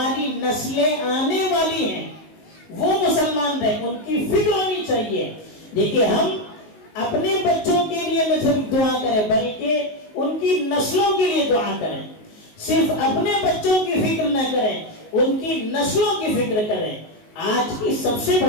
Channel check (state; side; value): late; right; 19 ms